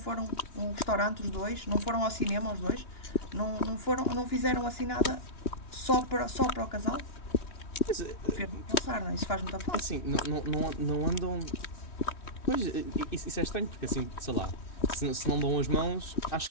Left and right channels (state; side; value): late; right; 2.9 ms